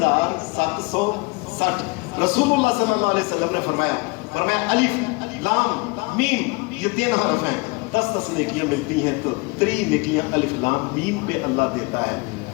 رسول اللہ صلی اللہ علیہ وسلم نے فرمایا الف لام میم یہ 3 حرف ہیں, 10 نیکیاں ملتی ہیں تو 3 نیکیاں الف لام میم پہ اللہ دیتا ہے.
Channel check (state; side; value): quieter; right; 27.1 dB